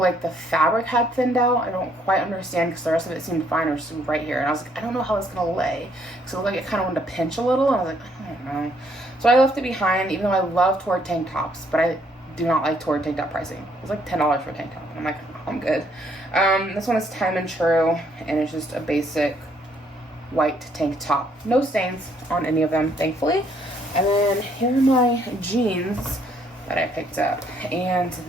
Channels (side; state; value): both; normal; correlation 0.68